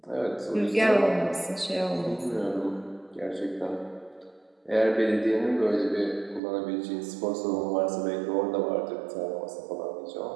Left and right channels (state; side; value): drops out; left; at 6.4 s